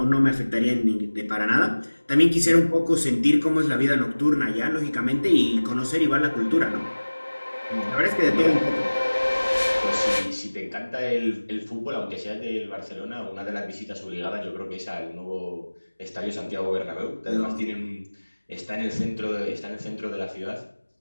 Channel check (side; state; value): both; inverted; correlation -1.00